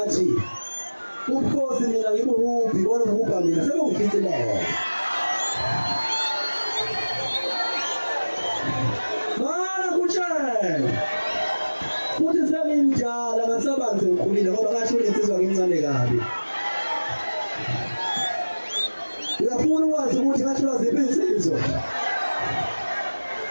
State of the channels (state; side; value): inverted; both; correlation -1.00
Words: ubukhosi mina ngibuhuphi bona ubupha mina sebengifithileyo mana kutshela futhi sengimdala ngasabanzi ngikhulile ngoba ngasho insizwa ngincane kabi uyafuna ukwazi ukuthi ngasho ziphi insizwa